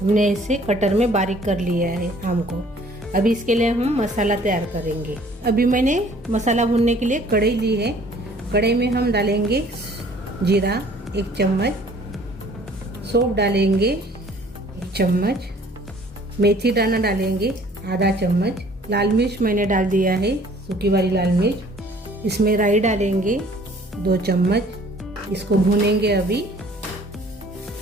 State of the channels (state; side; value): normal; both; correlation 0.55